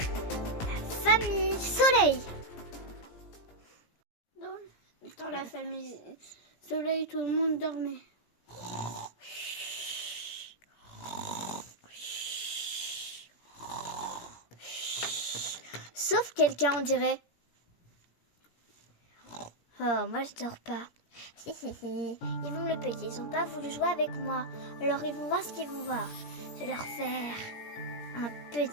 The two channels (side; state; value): right; late; 17 ms